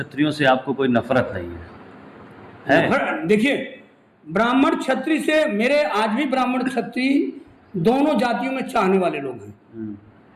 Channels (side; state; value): both; identical; correlation 1.00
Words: से आपको कोई नफरत नहीं है? देखिए, ब्राह्मण क्षत्रिय से मेरे आज भी ब्राह्मण क्षत्रिय दोनों जातियों में चाहने वाले लोग हैं।